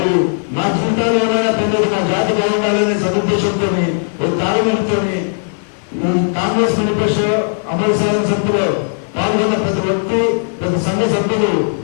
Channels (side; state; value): right; silent; 55 dB below the other